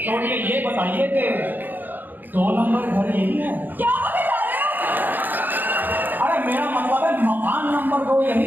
छोड़िए, ये बताइए कि 2 नंबर घर यही है? क्या बता रहे हो? अरे मेरा मतलब है मकान नंबर 2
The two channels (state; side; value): late; left; 0.088 ms